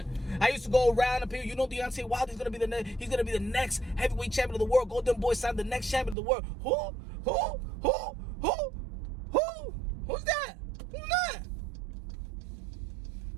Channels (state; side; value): drops out; left; at 6.2 s